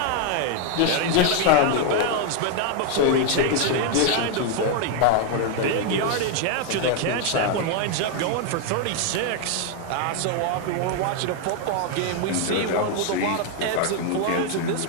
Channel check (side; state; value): both; different; correlation 0.01